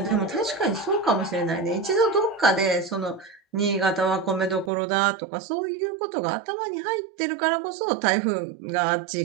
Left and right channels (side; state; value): left; drops out; at 4.7 s